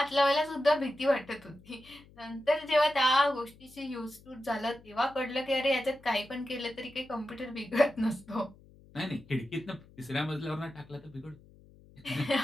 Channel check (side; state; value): left; noise; hum, 24 dB below the sound